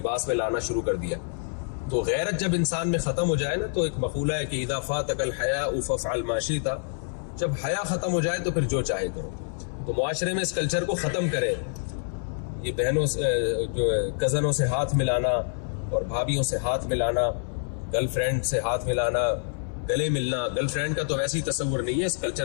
میں لانا شروع کر دیا. تو غیرت جب انسان میں ختم ہو جائے نا, تو ایک مقولہ ہے کہ اذا فاتک الحیاء فافعل ما شئت, جب حیا ختم ہو جائے تو پھر جو چاہے کرو. تو معاشرے میں اس کلچر کو ختم کریں. یہ بہنوں سے, جو کزنوں سے ہاتھ ملانا اور بھابھیوں سے ہاتھ ملانا, گرل فرینڈ سے ہاتھ ملانا, گلے ملنا, گرل فرینڈ کا تو ویسے ہی تصور نہیں ہے. اس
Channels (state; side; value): silent; right; 59 dB below the other